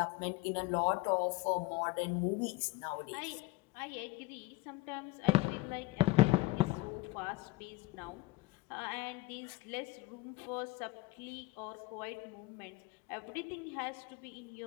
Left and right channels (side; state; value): right; quieter; 20.2 dB